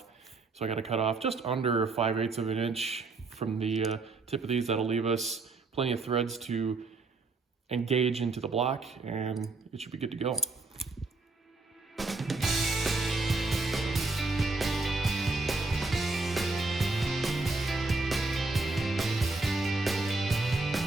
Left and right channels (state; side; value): quieter; left; 3.6 dB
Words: So I got to cut off just under 5/8 of an inch from the tip of these. That'll leave us plenty of threads to engage into the block and it should be good to go.